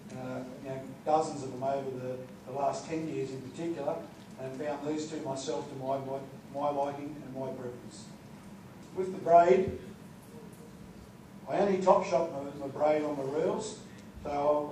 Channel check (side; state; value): both; identical; correlation 1.00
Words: dozens of them over the last 10 years in particular, and found these two myself to my liking and my preference. With the braid, I only top shot my braid on the reels, so